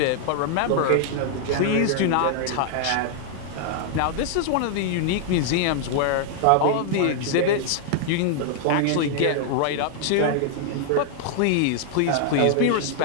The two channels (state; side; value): different; both; correlation 0.00